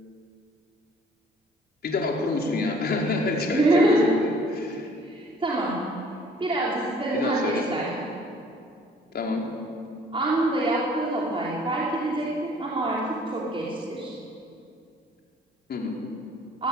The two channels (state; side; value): normal; both; correlation 0.56